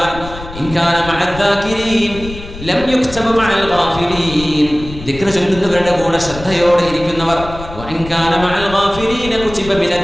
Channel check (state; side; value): noise; left; rumble, 13 dB below the sound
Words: ദിക്ർ ചൊല്ലുന്നവരുടെ കൂടെ ശ്രദ്ധയോടെ ഇരിക്കുന്നവർ,